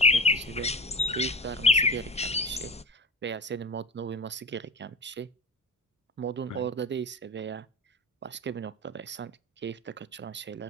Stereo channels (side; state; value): both; normal; correlation 0.30